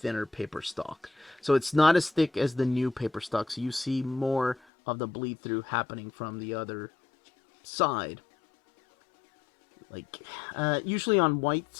paper stock. So it's not as thick as the new paper stock, so you see more of the bleed through happening from the other side. Like, usually on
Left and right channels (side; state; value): right; drops out; at 4.6 s